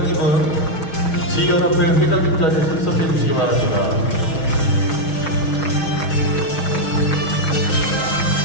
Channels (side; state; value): right; late; 6.3 ms